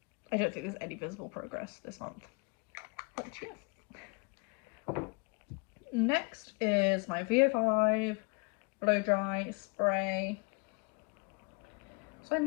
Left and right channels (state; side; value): quieter; right; 32.4 dB